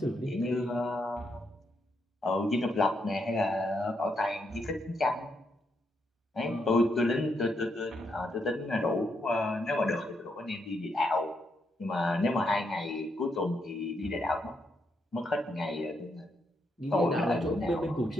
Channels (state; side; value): normal; both; correlation 0.79